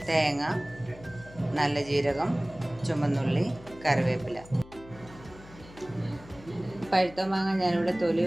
തേങ്ങ, നല്ല ജീരകം, ചുമന്നുള്ളി, കറിവേപ്പില. പഴുത്ത മാങ്ങ ഞാനിവിടെ തൊലി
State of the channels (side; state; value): left; noise; hum, 20 dB below the sound